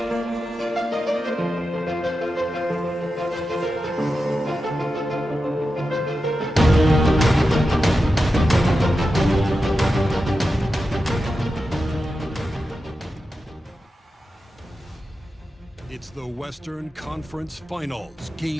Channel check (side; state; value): both; normal; correlation 0.91